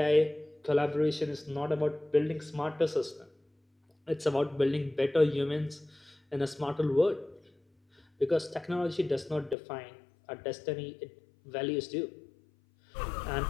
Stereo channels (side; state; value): right; drops out; at 9.6 s